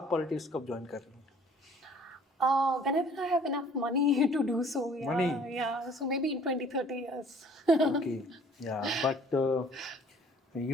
पॉलिटिक्स कब ज्वाइन कर रहे हैं? Whenever I have enough money to do so, yeah. Money? Yeah, so maybe in 20-30 years. Okay, yeah, but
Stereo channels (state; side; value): normal; both; correlation 0.55